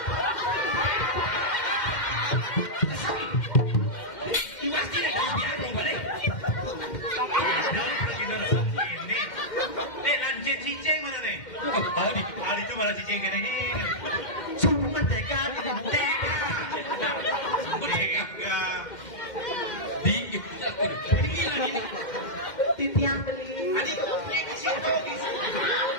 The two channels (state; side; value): late; right; 2.1 ms